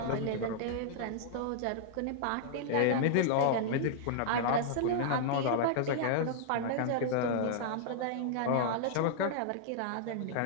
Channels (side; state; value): both; different; correlation -0.01